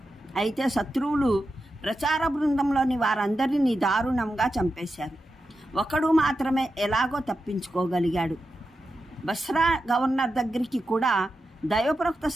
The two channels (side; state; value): both; normal; correlation 0.90